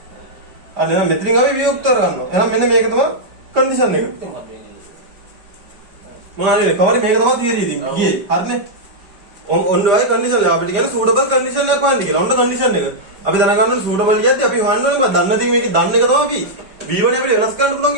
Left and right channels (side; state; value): left; late; 5.2 ms